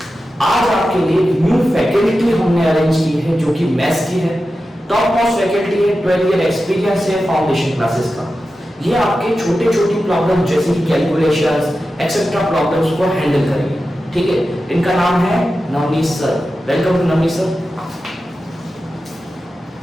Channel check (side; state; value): both; normal; correlation 0.92